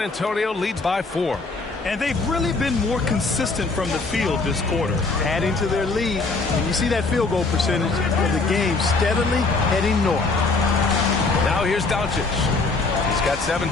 Antonio leads by 4. And they've really been more consistent from the field this quarter. Adding to their lead. And you see that field goal percentage of the game steadily heading north. Now here's Doncic. He's got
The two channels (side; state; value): right; quieter; 3.8 dB